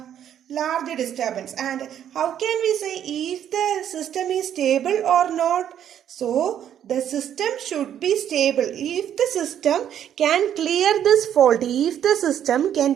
large disturbance. And how can we say if the system is stable or not? So the system should be stable if the system can clear this fault. If the system can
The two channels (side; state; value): left; quieter; 9.9 dB